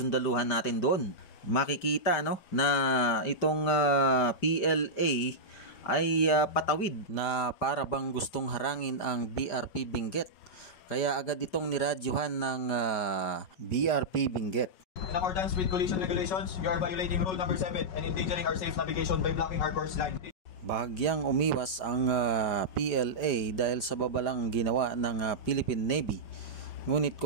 natin doon. Makikita na itong PLA ay patawid na para bang gustong harangin ang BRP Benguet. Kaya agad itong niradyuhan ng BRP Benguet. In accordance with collision regulations, you are violating rule number 7 and endangering our safe navigation by blocking our course line. Bahagyang umiwas ang PLA dahil sa babalang ginawa ng Philippine Navy. Ngunit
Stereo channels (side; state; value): right; late; 4.9 ms